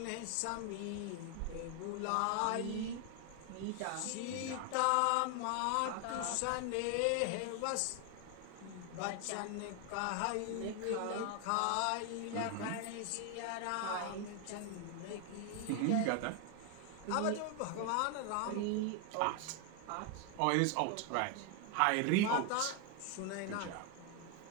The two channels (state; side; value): different; both; correlation 0.01